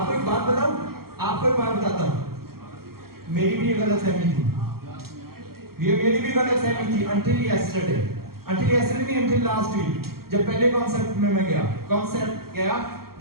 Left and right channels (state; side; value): late; left; 0.94 ms